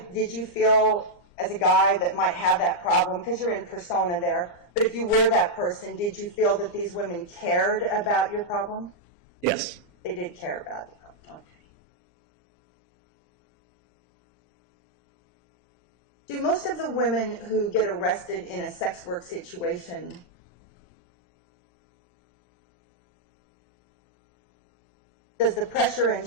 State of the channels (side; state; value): right; late; 12 ms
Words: did you feel as a guy that might have that problem, because you're in persona there, but if you were that person, did you feel that these women cared about your problem? Yes. They did care about the problem. Okay. Do most of the women who get arrested in a sex work situation does the pressure